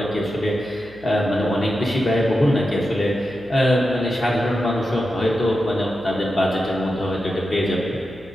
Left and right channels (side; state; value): left; noise; hum, 24 dB below the sound